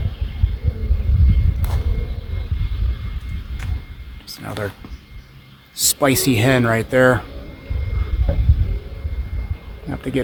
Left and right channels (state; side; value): identical; both; correlation 1.00